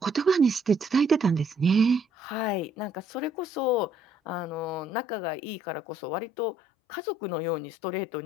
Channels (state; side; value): drops out; right; at 4.9 s